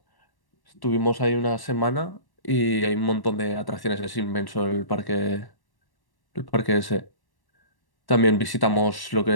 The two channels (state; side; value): late; right; 1.1 ms